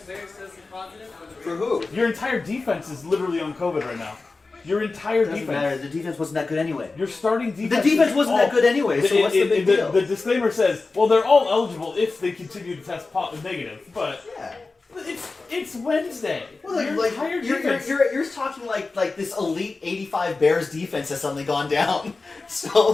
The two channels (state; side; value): quieter; right; 3.8 dB